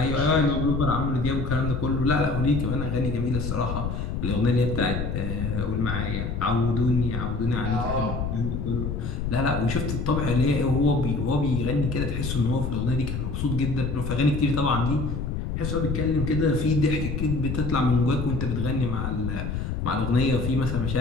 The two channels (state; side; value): noise; left; rumble, 3 dB below the sound